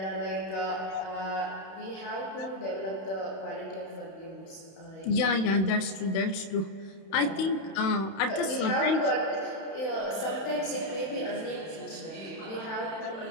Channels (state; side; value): late; right; 31 ms